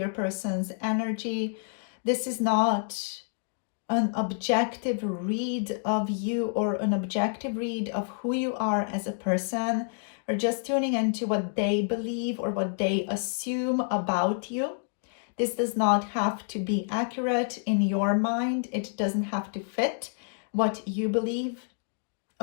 person's energy. This is not an objective read of you or an objective read of who you are as a person, or just tuning into what they believe or what they assume about you. This does not have to be accurate in your mind. It doesn't have to fit what you believe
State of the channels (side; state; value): right; silent; digital silence